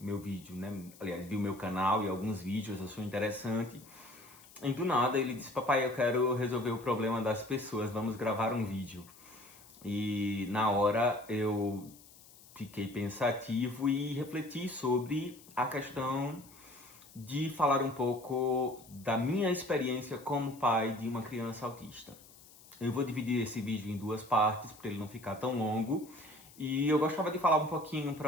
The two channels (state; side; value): noise; left; hiss, 22 dB below the sound